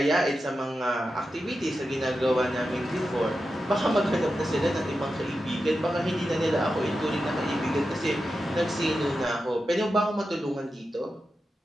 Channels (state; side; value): normal; both; correlation 0.90